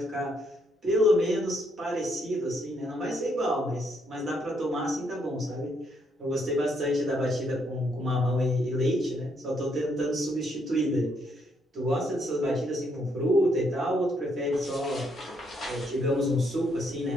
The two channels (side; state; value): both; normal; correlation 0.74